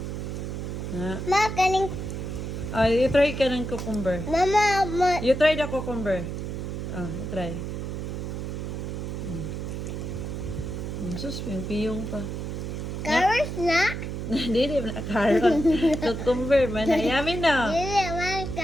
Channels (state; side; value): noise; right; hum, 5 dB below the sound